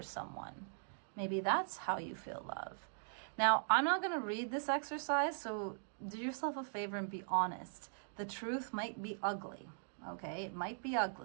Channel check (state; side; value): silent; left; digital silence